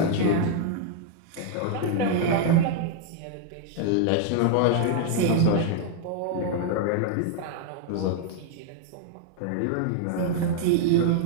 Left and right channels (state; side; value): different; both; correlation 0.00